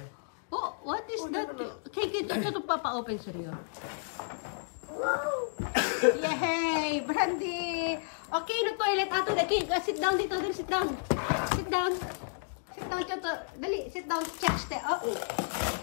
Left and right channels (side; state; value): right; silent; digital silence